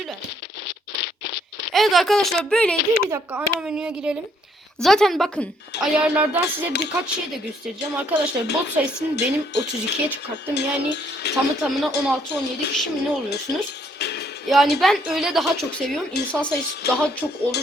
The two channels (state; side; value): normal; both; correlation 0.67